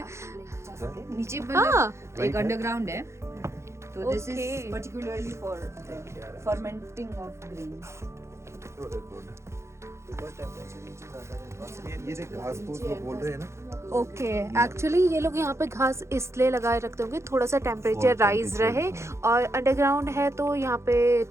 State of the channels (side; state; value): left; late; 0.13 ms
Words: नीचे हाँ. एक अंडरग्राउंड है. तो this Okay. Is particularly for fermenting of grains. ये देख घास फूस वो बोल रहे हैं ना. ओके. एक्चुअली ये लोग यहाँ पे घास इसलिए लगाए रखते होंगे थोड़ा सा टेम्परेचर और राइज temperature, रहे, हाँ. और अंडरग्राउंड है तो यहाँ पे